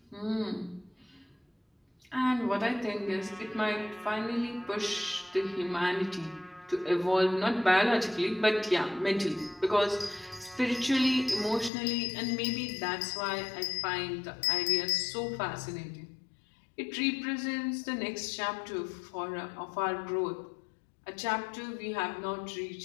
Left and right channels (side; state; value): right; drops out; at 11.7 s